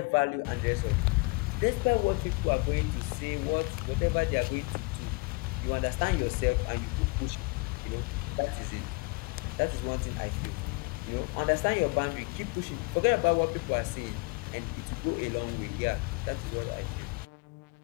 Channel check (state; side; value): quieter; right; 28.9 dB